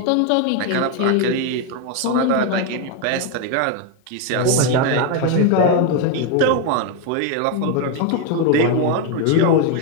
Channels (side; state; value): both; different; correlation 0.01